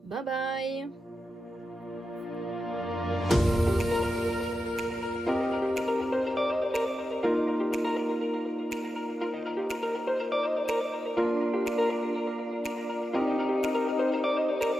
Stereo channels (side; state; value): both; normal; correlation 0.90